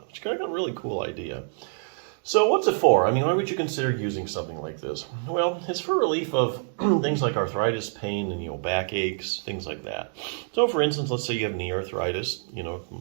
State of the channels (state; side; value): silent; left; digital silence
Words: which is kind of a really cool idea. So what's it for? I mean, why would you consider using something like this? Well, it's for relief of things like arthritis, pain, and back aches, things like that. So for instance, let's say you have knee arthritis, you